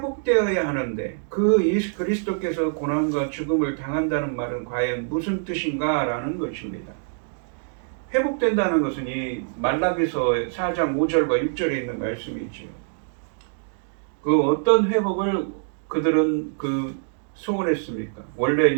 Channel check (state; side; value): silent; left; digital silence